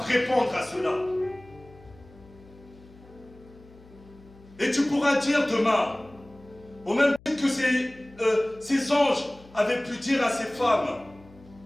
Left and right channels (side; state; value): left; noise; hum, 24 dB below the sound